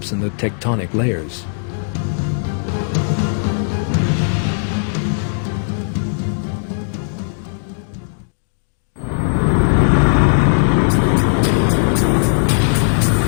in the tectonic layers.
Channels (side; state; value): right; silent; digital silence